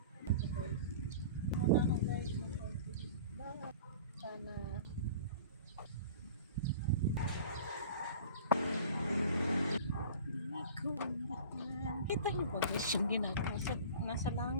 Muna na guys, sana kita niyo ba guys yung ginagawa? Nasa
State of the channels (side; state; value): both; inverted; correlation -0.41